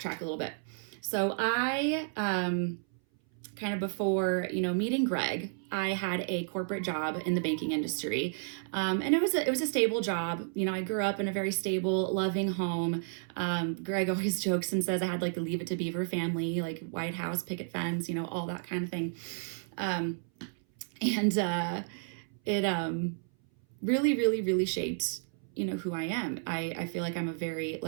a little bit. So I, kind of before, meeting Greg, I had a corporate job in the banking industry. And it was a stable job. I grew up in a very stable, loving home. Greg always jokes and says I had like the Leave It to Beaver family, like White House, picket fence, all that kind of thing. It really, really, really shaped who I am. I feel like I'm a very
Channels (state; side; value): silent; left; 57 dB below the other